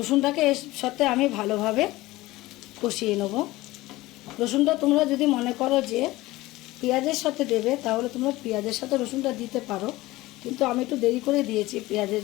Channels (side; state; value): right; quieter; 18.7 dB